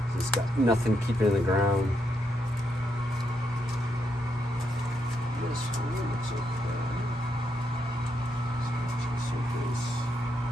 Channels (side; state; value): both; normal; correlation 0.80